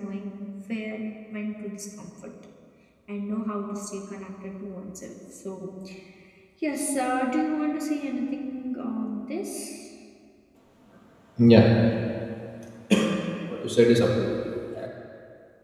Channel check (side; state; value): both; identical; correlation 1.00